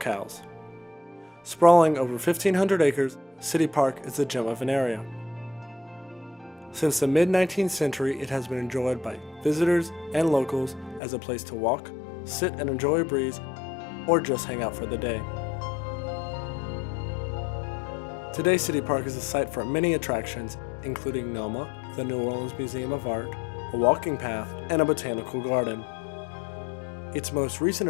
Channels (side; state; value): right; drops out; at 11.0 s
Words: Sprawling over 1,500 acres, City Park is the gem of an area. Since the mid-19th century, it has been enjoyed by visitors and locals as a place to walk, sit and enjoy a breeze, or just hang out for the day. Today, City Park is a site for many attractions, including NOMA, the New Orleans Museum of Art, a walking path, and a botanical garden. Its most recent